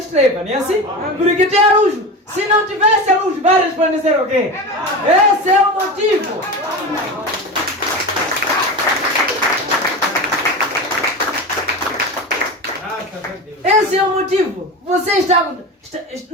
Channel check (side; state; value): both; normal; correlation 0.26